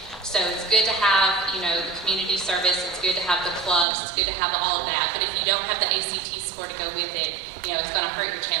So it's good to have, the community service, it's good to have the clubs, it's good to have all of that, but if you don't have the ACT score to go with it, it's going to hurt your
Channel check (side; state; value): left; drops out; at 3.9 s